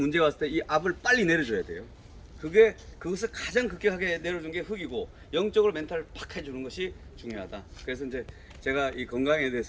왔을 때 이 압을 빨리 내려줘야 돼요. 그것을 가장 급격하게 내려준 게 흙이고 영적으로 멘탈을 팍 해주는 것이 중요하다. 그래서 이제 제가 이 건강에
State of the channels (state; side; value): identical; both; correlation 1.00